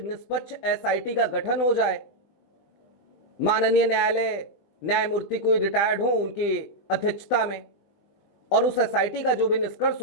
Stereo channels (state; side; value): late; right; 20 ms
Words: निष्पक्ष SIT का गठन हो जाए। माननीय न्यायालय न्यायमूर्ति कोई रिटायर्ड हो उनकी अध्यक्षता में, और उस SIT का जो भी निष्कर्ष